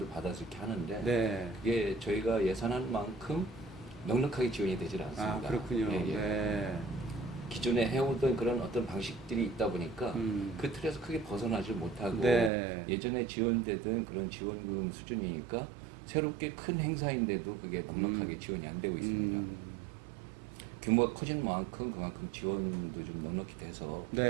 받아서 이렇게 하는데 네. 그게 저희가 예산한 만큼 넉넉하게 지원이 되질 않습니다. 아, 그렇군요. 예, 예. 네. 기존에 해오던 그런 어떤 방식들이 있다 보니까 그 틀에서 크게 벗어나질 못하고 네. 예전에 지원되던 그런 지원금 수준이니까 새롭게 큰 행사인데도 그게 넉넉하게 지원이 안 되고 있습니다. 규모가 커진 만큼 그만큼 지원도 좀 넉넉히 돼서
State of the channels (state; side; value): drops out; left; at 12.5 s